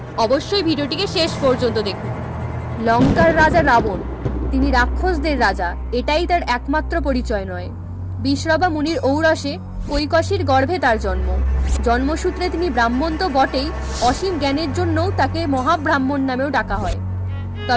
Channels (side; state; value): both; identical; correlation 1.00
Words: অবশ্যই ভিডিওটিকে শেষ পর্যন্ত দেখুন। লঙ্কার রাজা রাবণ, তিনি রাক্ষসদের রাজা, এটাই তার একমাত্র পরিচয় নয়। বিশ্রবা মুনির ঔরসে কৈকসীর গর্ভে তার জন্ম। জন্মসূত্রে তিনি ব্রাহ্মণ তো বটেই, অসীম জ্ঞানের জন্যও তাকে মহাব্রাহ্মণ নামেও ডাকা হয়।